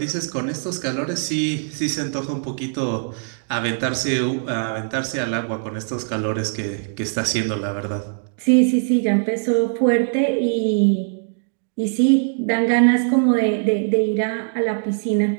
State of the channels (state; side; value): silent; left; digital silence